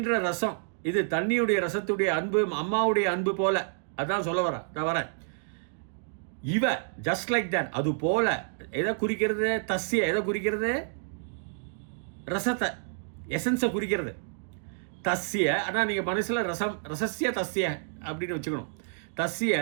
ரசம், இது தண்ணியுடைய ரசத்துடைய அன்பு, அம்மாவுடைய அன்பு போல. அதான் சொல்ல வரேன். இவ ஜஸ்ட் லைக் தட், அது போல. எதை குறிக்கிறது? தஸ்ய எதை குறிக்கிறது? ரசத்தை, எசன்ஸை குறிக்கிறது. தஸ்ய, ஆனால் நீங்கள் மனசில் ரசஸ்ய தஸ்ய அப்படின்னு வச்சுக்கணும். தஸ்ய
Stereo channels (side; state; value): left; silent; digital silence